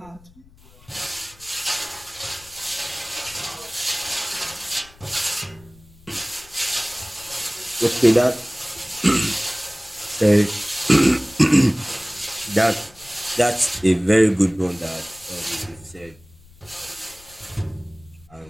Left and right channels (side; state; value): left; noise; rumble, 25 dB below the sound